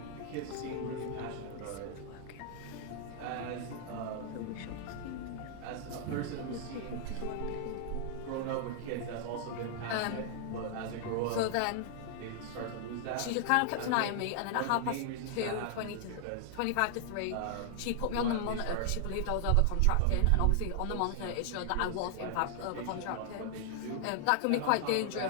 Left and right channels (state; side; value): different; both; correlation 0.00